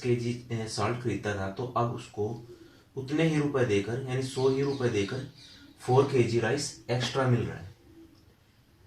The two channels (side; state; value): both; identical; correlation 1.00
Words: केजी साल्ट खरीदता था, तो अब उसको उतने ही रुपए देकर यानी 100 ही रुपए देकर 4 केजी राइस एक्स्ट्रा मिल रहा है।